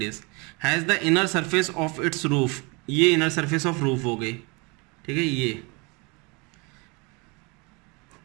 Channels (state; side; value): quieter; left; 29.2 dB